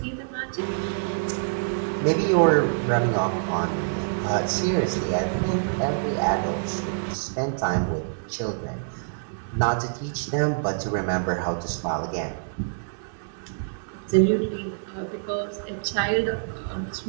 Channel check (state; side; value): silent; left; digital silence